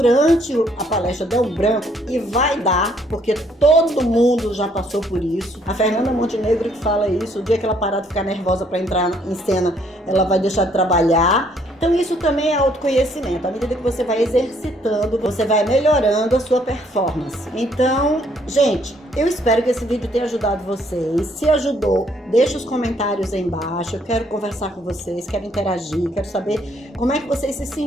a palestra der um branco, e vai dar, porque todo mundo já passou por isso. A Fernanda Montenegro que fala isso, o dia que ela parar de ficar nervosa para entrar em cena, ela vai deixar de trabalhar. Então isso também é autoconhecimento. À medida que você vai exercitando, você vai melhorando a sua performance. Então, gente, eu espero que esse vídeo tenha ajudado vocês. Se ajudou, deixa os comentários aí embaixo. Eu quero conversar com vocês, quero interagir, quero saber como é que vocês se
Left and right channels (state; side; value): normal; both; correlation 0.66